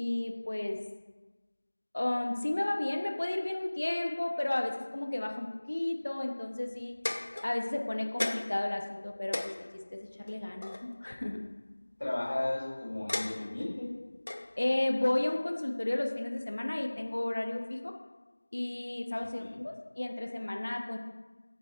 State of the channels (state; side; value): inverted; both; correlation -1.00